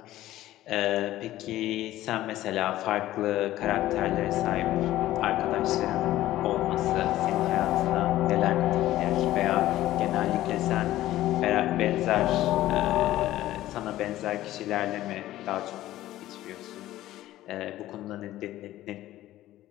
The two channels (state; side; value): quieter; right; 14.8 dB